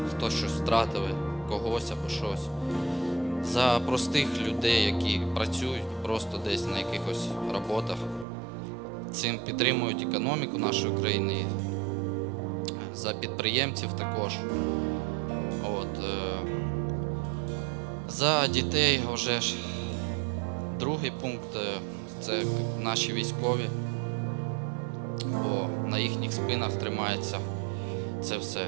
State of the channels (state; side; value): drops out; left; at 8.2 s